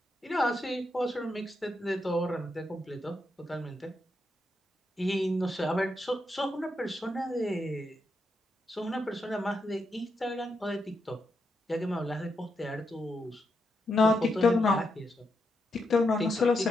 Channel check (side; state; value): both; normal; correlation 0.83